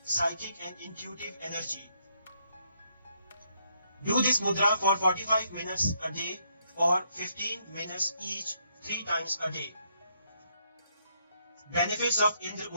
psychic and intuitive energy. Do this mudra for 45 minutes a day or 15 minutes each 3 times a day. Benefits of Indra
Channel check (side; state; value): both; inverted; correlation -0.73